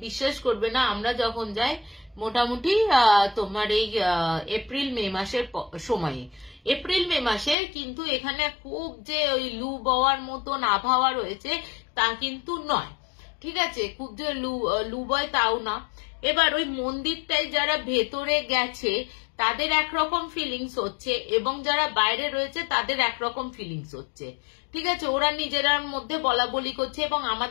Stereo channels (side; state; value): right; drops out; at 7.6 s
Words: বিশ্বাস করবে না, আমরা যখন যাই মোটামুটি তোমার এই এপ্রিল মে মাসের সময়ে, এপ্রিল মে মাসে কিন্তু এখানে খুব যে ওই লু বওয়ার মতন আবহাওয়া রয়েছে তা কিন্তু নয়। ঠিক আছে, খুব যে লু বয় তাও না। এবার ওই মন্দিরটাই যারা ভেতরে গেছে তাদের একরকম ফিলিংস হচ্ছে এবং যারা বাইরে রয়েছে তাদের একরকম ফিলিংস হচ্ছে। ঠিক আছে, ওরা নিজেরার মধ্যে বলা বলি করছে এবং